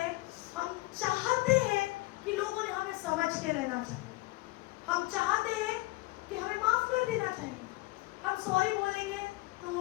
हम चाहते हैं कि लोगों ने हमें समझ के रहना चाहिए। हम चाहते हैं कि हमें माफ कर देना चाहिए। हम सॉरी बोलेंगे तो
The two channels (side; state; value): right; quieter; 20.5 dB